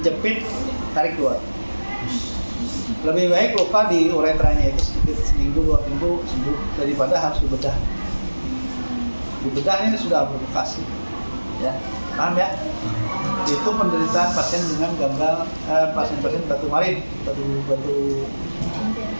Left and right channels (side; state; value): both; inverted; correlation -1.00